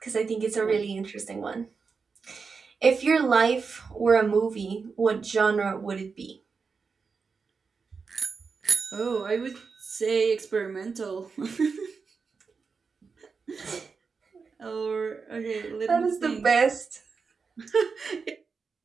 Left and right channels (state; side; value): quieter; left; 5.1 dB